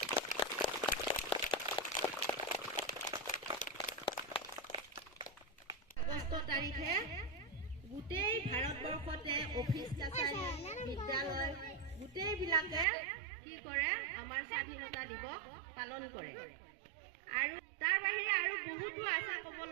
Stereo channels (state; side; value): drops out; left; at 12.9 s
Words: আগষ্ট তাৰিখে গোটেই ভাৰতবৰ্ষতে অফিচ কাছাৰী, বিদ্যালয় গোটেইবিলাকে কি কৰে, আমাৰ স্বাধীনতা দিৱস পালন কৰে। আৰু তাৰ বাহিৰে আৰু বহুতো আছে ক'ব